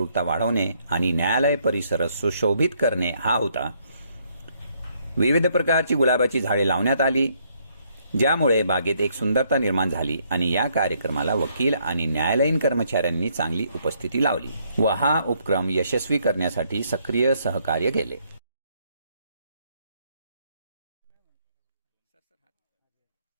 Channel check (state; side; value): inverted; both; correlation -0.70